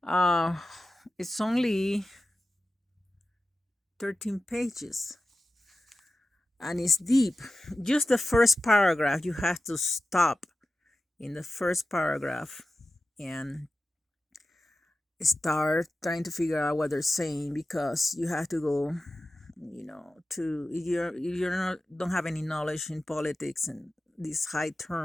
Uh, it's only 13 pages and it's deep. Just the first paragraph, you have to stop in the first paragraph and start trying to figure out what they're saying, because you have to go, to you're not don't have any knowledge in politics and these high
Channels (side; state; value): both; normal; correlation 0.93